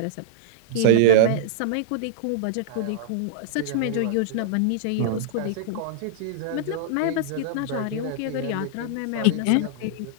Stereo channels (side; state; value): both; different; correlation -0.02